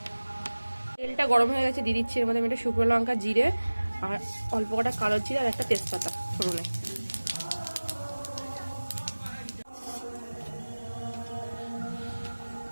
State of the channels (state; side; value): inverted; both; correlation -1.00